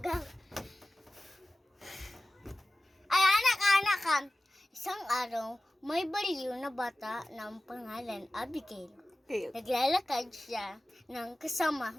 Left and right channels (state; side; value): normal; both; correlation 0.96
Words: go. Ay, anak. Isang araw, may baliw na bata ng pangalan Abigail. Okay. Naglalakad siya ng kasama